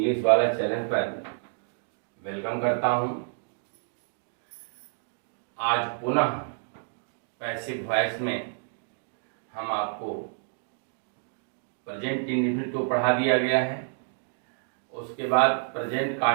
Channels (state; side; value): silent; left; digital silence